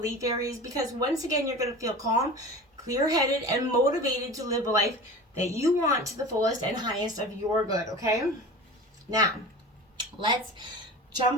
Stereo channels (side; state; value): both; normal; correlation 0.35